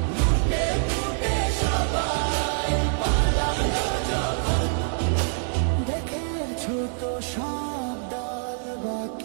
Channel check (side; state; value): left; silent; 61 dB below the other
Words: তো সব দল